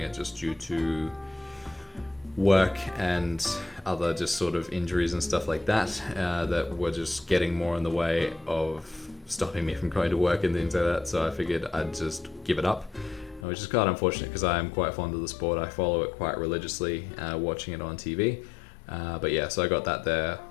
it just due to work and other just sort of injuries and stuff like that, that were just getting more in the way of stopping me from going to work and things like that. So I figured I'd just give it up, which is quite unfortunate because I am quite fond of the sport. I follow it quite religiously, watching it on TV. But yeah, so I got that there.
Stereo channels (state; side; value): drops out; right; at 13.5 s